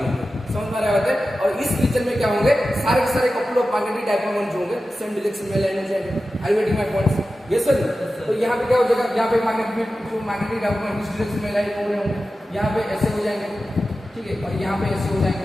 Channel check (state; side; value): normal; both; correlation 0.93